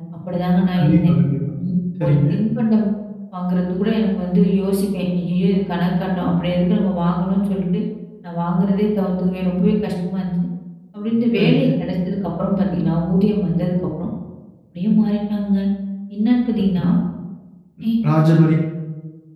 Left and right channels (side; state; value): both; identical; correlation 1.00